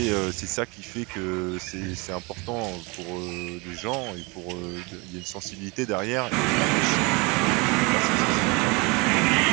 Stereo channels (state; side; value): quieter; left; 27.9 dB